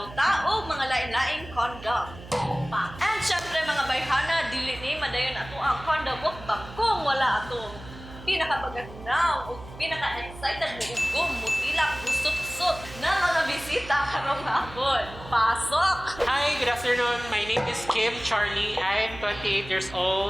Tao mga lain-laing condom. And syempre mga bayhana, dili ni madayon ato ang condom mukbang kung wala atong pinakabaganaw o pinaka-excited mo ugom, mutilak, busot-sot na mga bisita karong hapon. Pasok! Hi, good afternoon. My name is Kimcharlie. I'm 28 years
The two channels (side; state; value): right; noise; hum, 16 dB below the sound